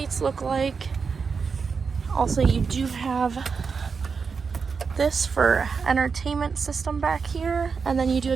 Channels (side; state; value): left; quieter; 5.4 dB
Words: look like. Also, you do have this for entertainment system back here, and then you do